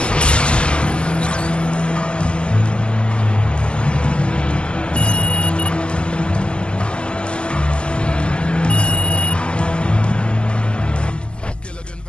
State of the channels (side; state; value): right; late; 0.051 ms